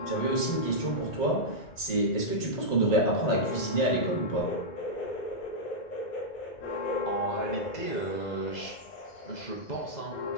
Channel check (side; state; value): right; late; 2.0 ms